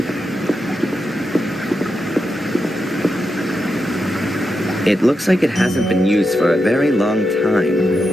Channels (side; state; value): both; normal; correlation 0.87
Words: It looks like it hasn't been used for a very long time.